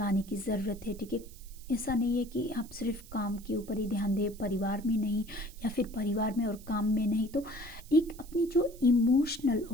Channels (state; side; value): noise; right; hiss, 21 dB below the sound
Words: की ज़रूरत है, ठीक है। ऐसा नहीं है कि आप सिर्फ काम के ऊपर ही ध्यान दें, परिवार में नहीं, या फिर परिवार में और काम में नहीं। तो एक अपनी जो इमोशनल